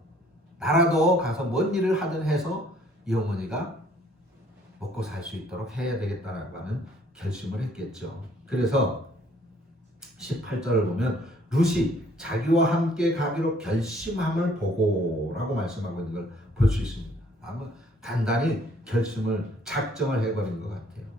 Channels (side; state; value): both; normal; correlation 0.61